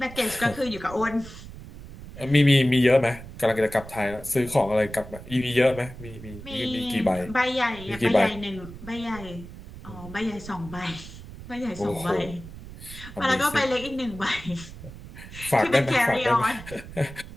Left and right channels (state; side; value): noise; right; rumble, 14 dB below the sound